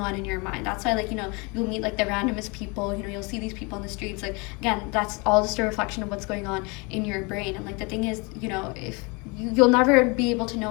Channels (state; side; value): quieter; right; 29.5 dB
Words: in your mind. That's why like you'll meet like the randomest people, you'll see these people on the streets. Like again, that's all just a reflection of what's going on in your brain. And like the thing is, if you'll never be able to know